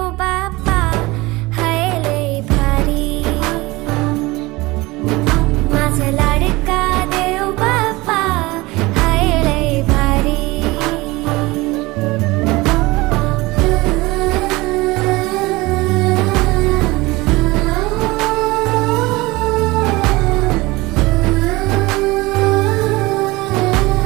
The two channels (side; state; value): left; quieter; 21.6 dB